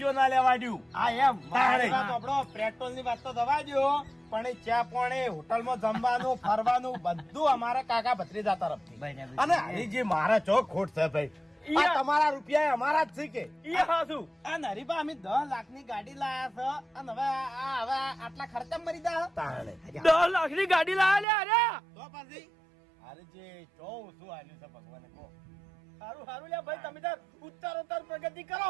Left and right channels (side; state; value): left; drops out; at 21.2 s